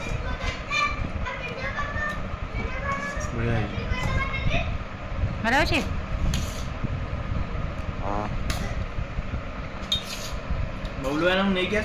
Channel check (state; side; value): identical; both; correlation 1.00